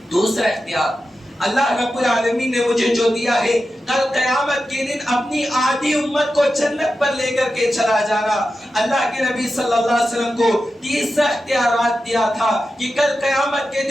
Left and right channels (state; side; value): normal; both; correlation 0.91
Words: دوسرا اختیار اللہ رب العالمین نے مجھے جو دیا ہے کل قیامت کے دن اپنی آدھی امت کو جنت پر لے کر کے چلا جانا۔ اللہ کے نبی صلی اللہ علیہ وسلم کو تیسرا اختیارات دیا تھا کہ کل قیامت کے